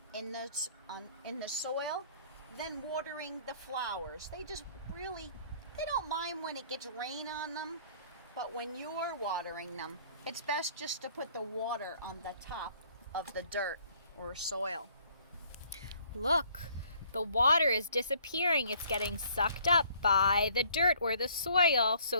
soil than watering the flowers. They don't mind when it gets rain on them, but when you're watering them, it's best just to put the water on the top of the dirt or soil. Look, the water is disappearing. It's getting sucked up by the dirt or the soil, so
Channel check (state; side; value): inverted; both; correlation -0.59